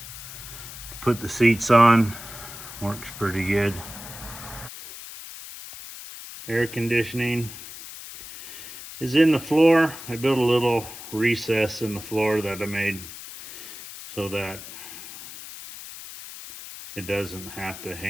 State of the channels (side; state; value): left; noise; hiss, 13 dB below the sound